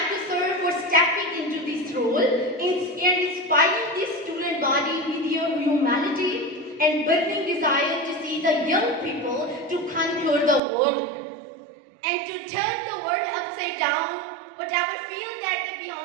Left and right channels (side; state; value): left; drops out; at 10.6 s